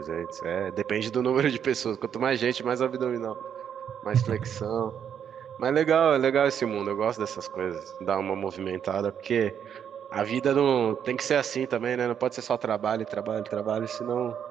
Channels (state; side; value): quieter; left; 8.5 dB